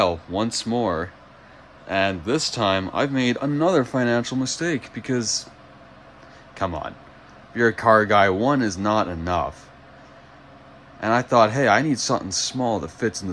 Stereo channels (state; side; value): identical; both; correlation 1.00